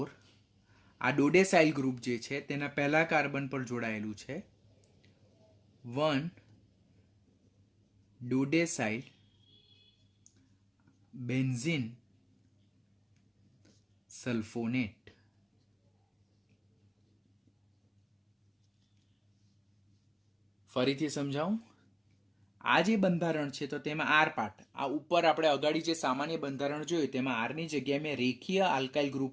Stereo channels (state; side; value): identical; both; correlation 1.00